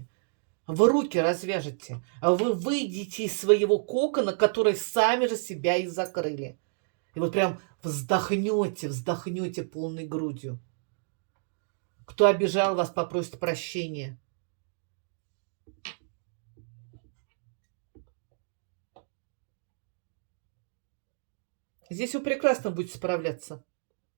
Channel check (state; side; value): silent; left; digital silence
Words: Вы руки развяжете, а вы выйдете из своего кокона, который сами же себя и закрыли. И вот прям вздохнете полной грудью. Кто обижал вас, попросит прощения. Здесь вы прекрасно будете справляться.